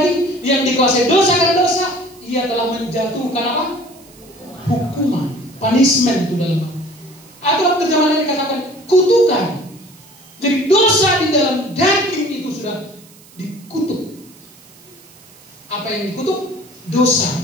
yang dikuasai dosa karena dosa. Ia telah menjatuhkan apa? Hukuman, punishment itu dalam. Atau terjemahan yang dikatakan kutukan. Jadi dosa di dalam daging itu sudah dikutuk. Apa yang dikutuk?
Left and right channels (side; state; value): right; noise; hiss, 25 dB below the sound